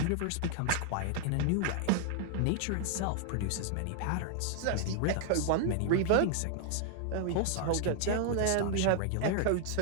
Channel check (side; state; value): both; different; correlation -0.01